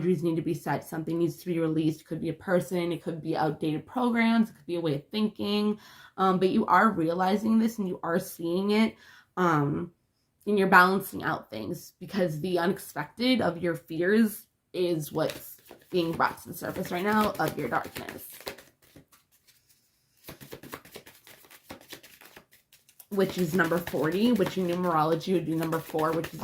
need to be set. Something needs to be released. It could be a person, it could be outdated programs, it could be a way of thinking, but you are realizing this and you are seeing it, and you're balancing out things, because the unexpected of your fears is what's being brought to the surface right now of your darkness. which is number 40, which in numerology would be number 4, which is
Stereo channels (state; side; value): identical; both; correlation 1.00